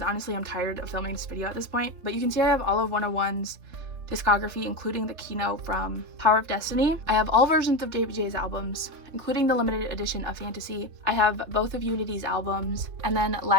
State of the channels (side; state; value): left; late; 3.4 ms